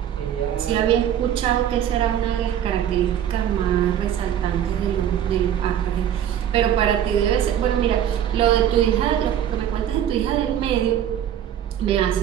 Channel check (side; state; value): left; quieter; 10.2 dB